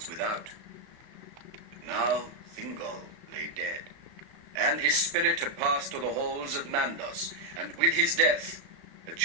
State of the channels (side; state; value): left; late; 36 ms